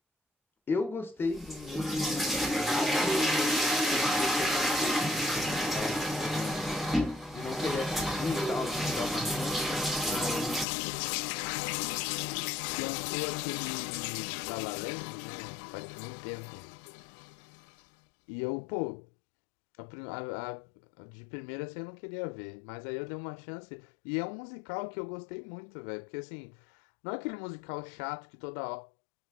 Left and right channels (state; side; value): drops out; right; at 10.7 s